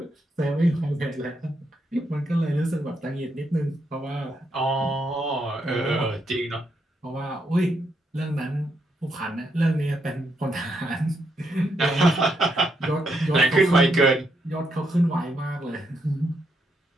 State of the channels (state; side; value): normal; both; correlation 0.79